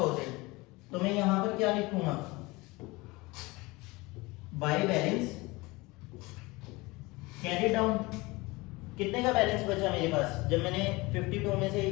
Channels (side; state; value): right; quieter; 23.0 dB